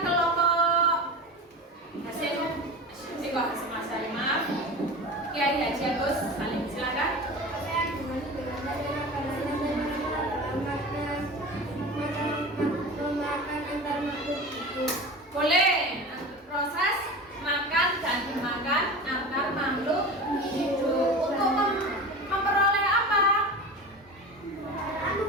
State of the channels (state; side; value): normal; both; correlation 0.31